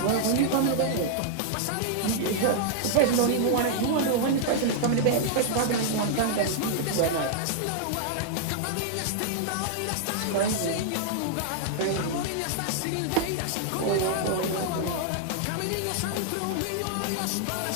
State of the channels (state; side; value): different; both; correlation -0.01